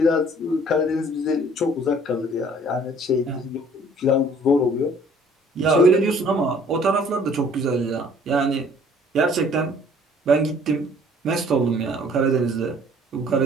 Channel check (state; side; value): normal; both; correlation 0.56